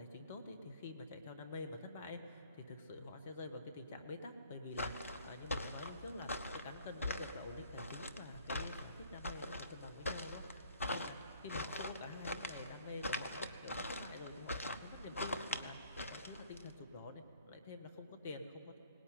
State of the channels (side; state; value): both; inverted; correlation -0.57